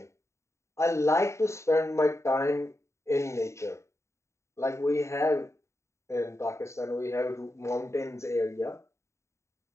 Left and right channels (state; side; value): late; right; 0.14 ms